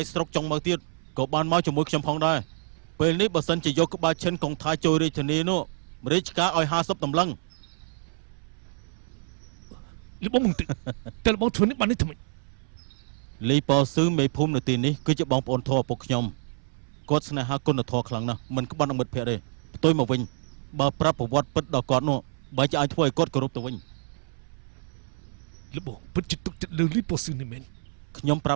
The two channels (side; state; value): left; silent; 60 dB below the other